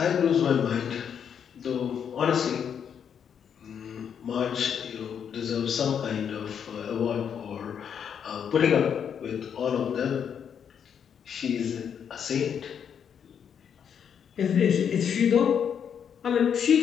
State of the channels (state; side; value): quieter; right; 7.9 dB